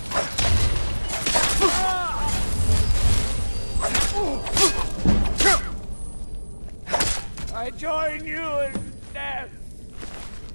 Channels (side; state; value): both; inverted; correlation -1.00